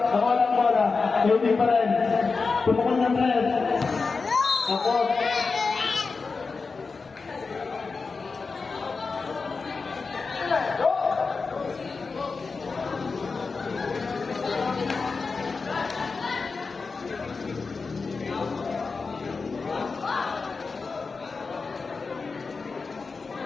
lang bola. Kaili pa rin. Tumukol ng tres. Tapos.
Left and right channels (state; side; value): quieter; right; 4.5 dB